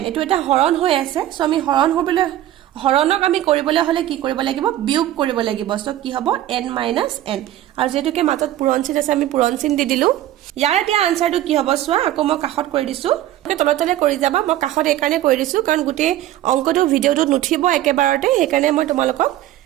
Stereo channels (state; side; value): quieter; left; 13.5 dB